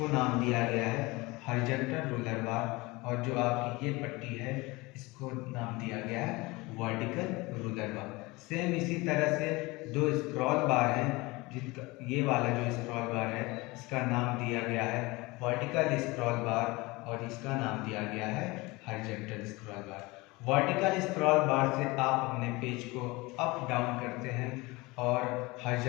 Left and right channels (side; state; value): right; quieter; 23.1 dB